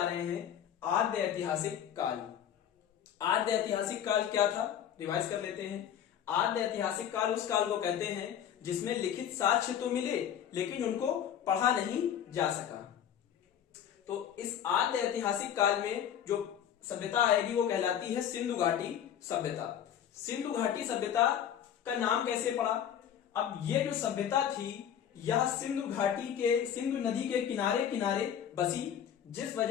रहे हैं आद्य ऐतिहासिक काल। आद्य ऐतिहासिक काल क्या था, रिवाइज कर लेते हैं। आद्य ऐतिहासिक काल उस काल को कहते हैं जिसमें लिखित साक्ष्य तो मिले लेकिन उनको पढ़ा नहीं जा सका। तो इस आद्य ऐतिहासिक काल में जो सभ्यता आएगी वो कहलाती है सिंधु घाटी सभ्यता। सिंधु घाटी सभ्यता का नाम कैसे पड़ा? अब ये जो सभ्यता थी यह सिंधु घाटी के, सिंधु नदी के किनारे किनारे बसी, जिस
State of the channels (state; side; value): quieter; right; 9.5 dB